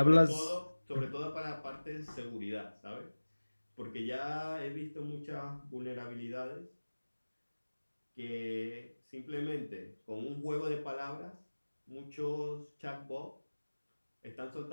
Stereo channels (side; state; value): both; inverted; correlation -1.00